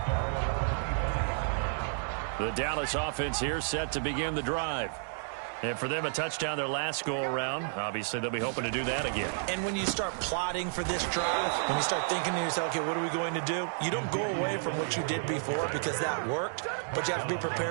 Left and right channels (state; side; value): silent; left; 57 dB below the other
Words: The Dallas offense here set to begin the drive. And for them, a touchdown their last go-around. Obviously, they'll be hoping to do that again. And when you start plotting for this drive, when you start thinking to yourself, okay, what are we going to do? You don't go away from what you did before because that worked, but you have to be